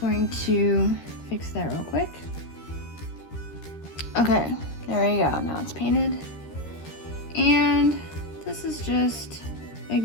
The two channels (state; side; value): late; right; 13 ms